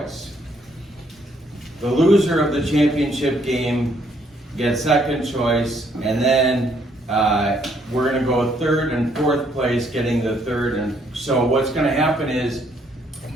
The loser of the championship game gets second choice, and then we're going to go third and fourth place, getting the third. And so what's going to happen is,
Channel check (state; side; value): normal; both; correlation 0.68